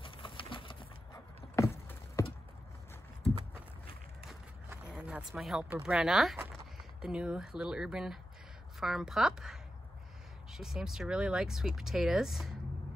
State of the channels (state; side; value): normal; both; correlation 0.90